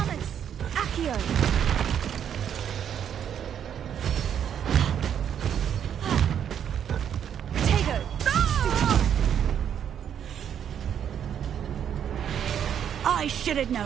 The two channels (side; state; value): left; quieter; 9.0 dB